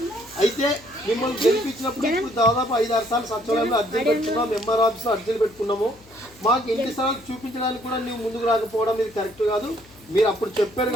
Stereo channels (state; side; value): noise; left; hum, 26 dB below the sound